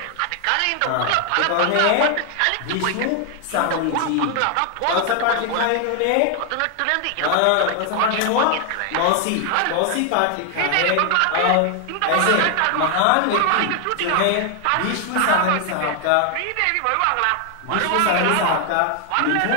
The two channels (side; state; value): both; different; correlation 0.00